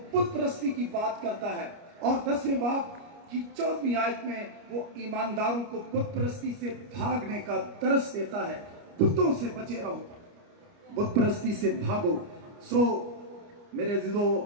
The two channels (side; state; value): left; late; 29 ms